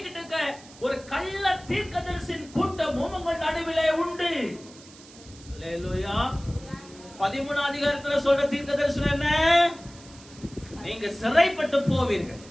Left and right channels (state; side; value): noise; right; hiss, 21 dB below the sound